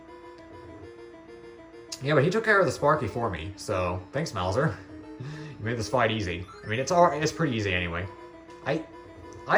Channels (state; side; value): identical; both; correlation 1.00